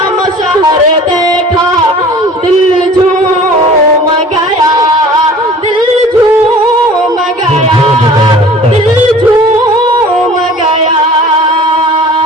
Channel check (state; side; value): normal; both; correlation 0.46